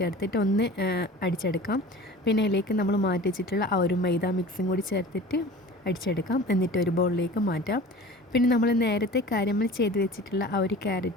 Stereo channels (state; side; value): normal; both; correlation 0.40